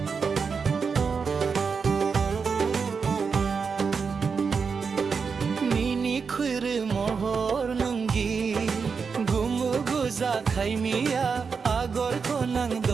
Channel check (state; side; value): quieter; left; 5.5 dB